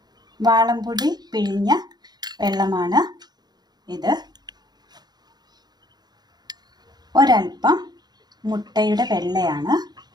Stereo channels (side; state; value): left; late; 0.20 ms